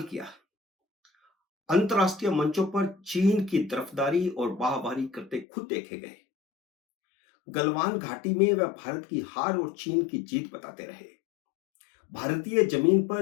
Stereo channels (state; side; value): drops out; right; at 5.5 s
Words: किया। अंतर्राष्ट्रीय मंचों पर चीन की तरफदारी और वाहवाही करते खुद देखे गए। गलवान घाटी में वह भारत की हार और चीन की जीत बताते रहे। भारतीय जमीन